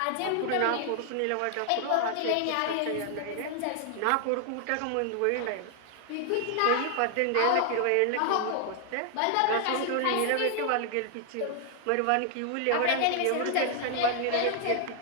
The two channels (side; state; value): both; different; correlation 0.00